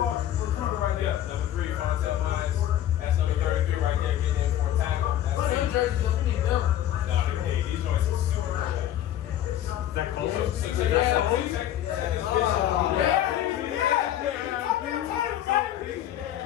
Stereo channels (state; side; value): quieter; right; 11.8 dB